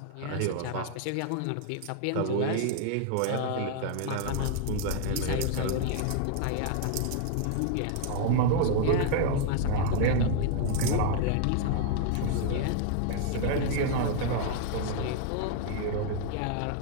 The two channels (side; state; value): both; different; correlation 0.00